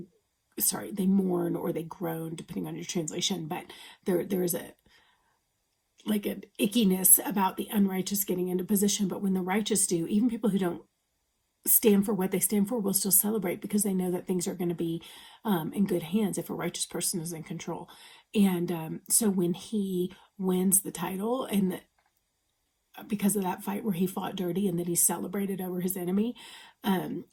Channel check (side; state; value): both; identical; correlation 1.00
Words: mourn, or they groan, depending on your translation. But there is an ickiness about the unrighteous getting into position. But when the righteous do, even people who don't stand for what they stand for will still celebrate because they know that things are going to be in good hands if a righteous person is in control. And so when he wins the title, and because of that fight where he fought dirty and then he celebrated over his enemy,